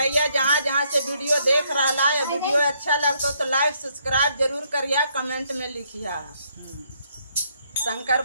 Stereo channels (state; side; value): inverted; both; correlation -0.71